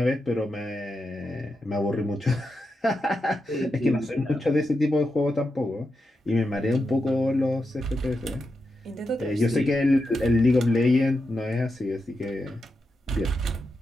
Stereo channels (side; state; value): both; normal; correlation 0.87